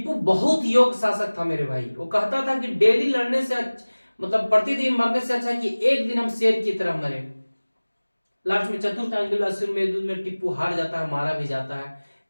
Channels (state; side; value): inverted; both; correlation -1.00